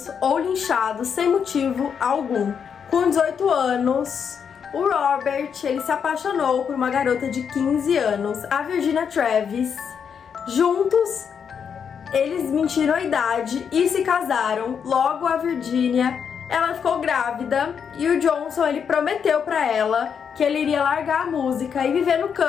ou linchados sem motivo algum. Com 18 anos, o Robert ele se apaixonou por uma garota de 15 anos, a Virginia Travis. Juntos, eles mentiram a idade e se casaram. Logo a Virginia, ela ficou grávida e o Johnson ele prometeu pra ela que ele iria largar a música e viver no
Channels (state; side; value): quieter; right; 7.1 dB